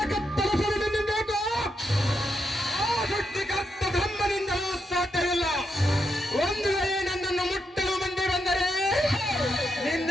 ಕತ್ತರಿಸಲು ನಿನ್ನ ಬೇಕು. ಆ ಸೃಷ್ಟಿಕರ್ತ ಬ್ರಹ್ಮನಿಂದಲೂ ಸಾಧ್ಯವಿಲ್ಲ. ಒಂದು ವೇಳೆ ನನ್ನನ್ನು ಮುಟ್ಟಲು ಮಂದಿ ಬಂದರೆ ನಿನ್ನ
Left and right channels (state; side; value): normal; both; correlation 0.82